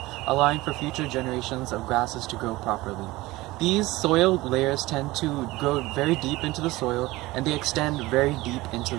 allowing for future generations of grasses to grow properly. These soil layers tend to grow very deep into the soil, and they extend very deep into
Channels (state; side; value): quieter; left; 19.5 dB